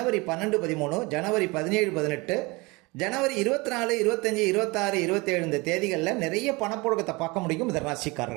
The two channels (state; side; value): quieter; left; 25.1 dB